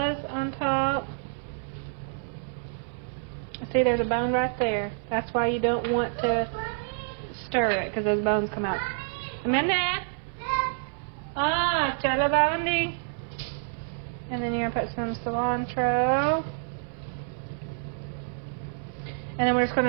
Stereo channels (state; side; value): silent; left; 59 dB below the other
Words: on top. See, there's a bone right there. That's why you don't want to stir it, because those bones come out. Amanda? Chala babandi. And then you're going to put some cilantro. And then we're just